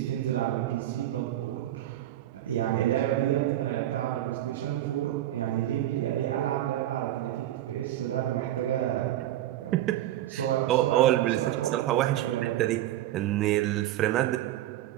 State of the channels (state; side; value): quieter; left; 13.5 dB